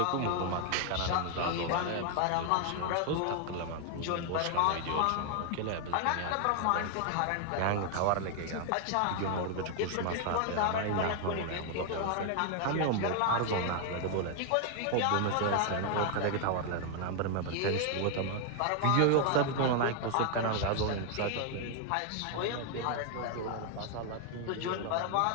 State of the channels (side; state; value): both; different; correlation 0.00